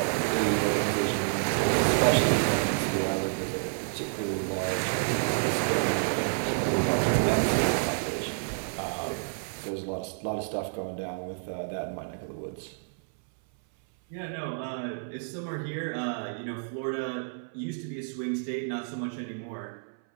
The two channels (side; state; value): left; silent; 58 dB below the other